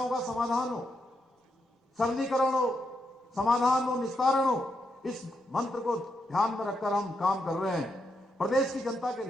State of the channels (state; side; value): normal; both; correlation 0.81